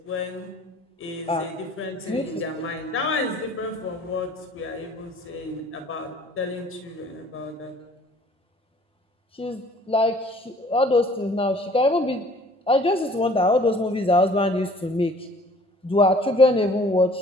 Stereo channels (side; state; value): both; normal; correlation 0.53